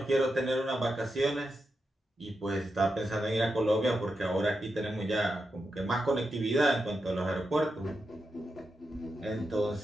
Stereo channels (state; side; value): normal; both; correlation 0.87